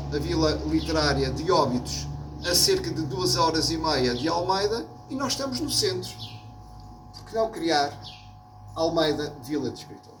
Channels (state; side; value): identical; both; correlation 1.00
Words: a Vila Literária de Óbidos, a cerca de 2h30 de Almeida, e nós estamos no centro. Por que não criar Almeida Vila de